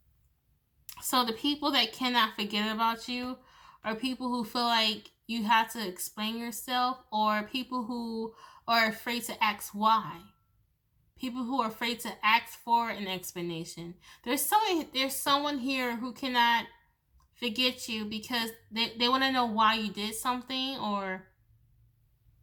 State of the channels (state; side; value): identical; both; correlation 1.00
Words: So the people that cannot forget about you are people who feel like you have to explain yourself, or people who are afraid to ask why. People who are afraid to ask for an explanation. There's someone here who cannot forget you because they want to know why you did something or